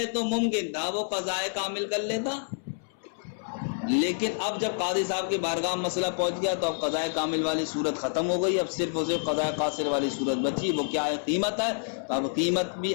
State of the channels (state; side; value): silent; right; 59 dB below the other